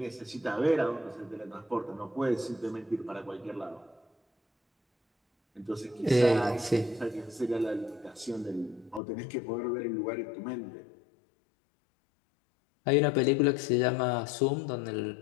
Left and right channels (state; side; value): drops out; right; at 9.0 s